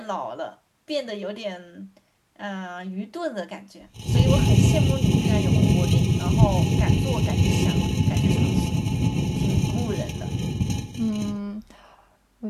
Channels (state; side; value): identical; both; correlation 1.00